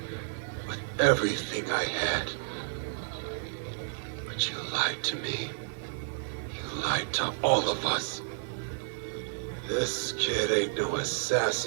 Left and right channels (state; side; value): silent; left; digital silence